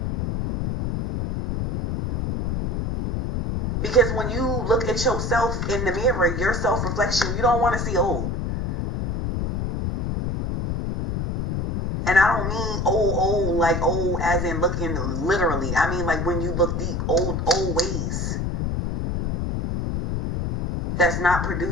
Because when you look at yourself in the mirror, your self-reflection, you don't want to see old. And I don't mean old, like old as in looking literally. I mean like when you look deep, old ways. That's not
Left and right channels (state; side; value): noise; left; rumble, 2 dB below the sound